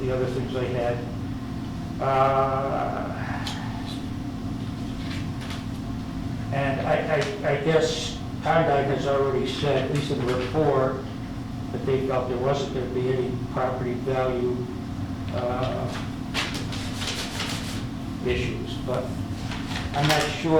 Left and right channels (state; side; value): identical; both; correlation 1.00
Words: other things I had. And I guess Condyne has already said, at least in the report, that they felt there wasn't going to be any property value issues. But I'm not